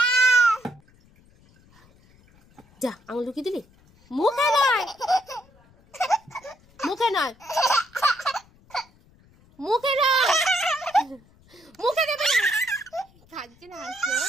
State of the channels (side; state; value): left; noise; rumble, 30 dB below the sound